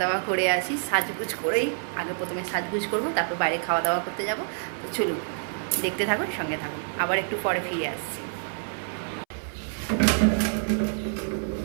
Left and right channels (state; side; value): silent; left; 60 dB below the other